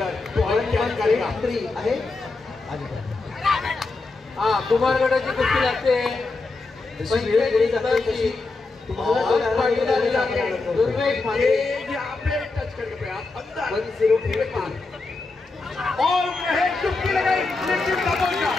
तो क्या करेगा. 1183 आहे. हा कुमार गटाची कुस्ती लागते. टच करके अंदर 1083 और चुटकी लगाई लेकिन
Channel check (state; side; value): quieter; right; 3.6 dB